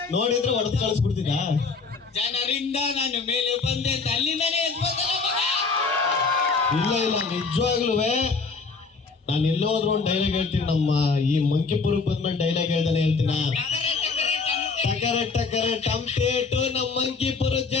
ನೋಡಿದ್ರೆ ಹೊಡೆದು ಕಳಿಸ್ಬಿಡ್ತಿದ್ದ. ಜನರಿಂದ ನಾನು ಮೇಲೆ ಬಂದೆ ಅಂತ ಅಲ್ಲಿಂದನೇ ಎದ್ಬೋದಲ್ಲ ಮಗ. ಇಲ್ಲ ಇಲ್ಲ, ನಿಜವಾಗ್ಲೂ ನಾನು ಎಲ್ಲೋದ್ರು ಒಂದು ಡೈಲಾಗ್ ಹೇಳ್ತೀನಿ. ನಮ್ಮ ಈ ಮಂಕಿಪುರಕ್ಕೆ ಬಂದ್ಮೇಲೆ ಡೈಲಾಗ್ ಹೇಳ್ದಾನೆ ಹೇಳ್ತೀನ. ಟಕರ ಟಕರ ಟಂಪೇಟು, ನಮ್ಮ ಮಂಕಿಪುರದ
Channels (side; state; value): right; quieter; 4.5 dB